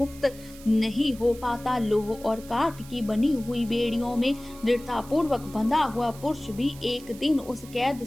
नहीं हो पाता। लोह और काठ की बनी हुई बेड़ियों में दृढ़ता पूर्वक बंधा हुआ पुरुष भी एक दिन उस कैद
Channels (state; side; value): noise; right; hiss, 19 dB below the sound